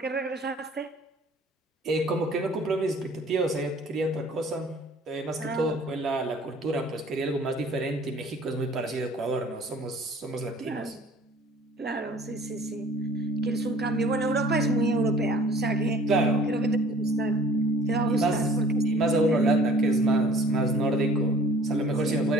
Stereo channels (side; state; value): both; normal; correlation 0.51